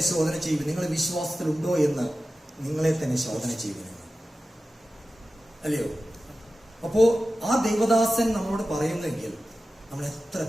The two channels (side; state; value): both; normal; correlation 0.94